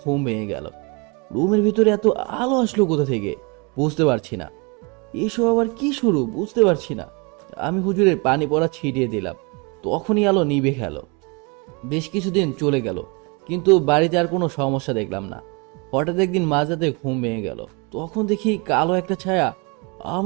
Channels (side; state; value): left; quieter; 30.3 dB